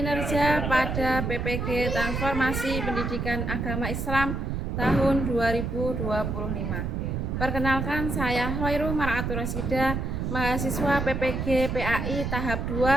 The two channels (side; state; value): right; noise; rumble, 2 dB below the sound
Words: pada PPG Transformasi Pendidikan Agama Islam tahun 2025. Perkenalkan, saya Hoirul Mar'atul Rasida, mahasiswa PPG PAI tahap